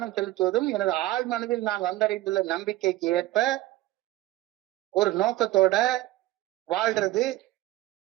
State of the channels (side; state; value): left; quieter; 16.6 dB